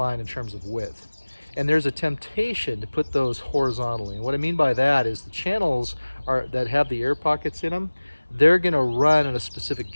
in terms of width. And there's a temptation to put those horizontally. And what I mean by that is the channels that have the air pockets in them, they're going to run in a specific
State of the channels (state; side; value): inverted; both; correlation -1.00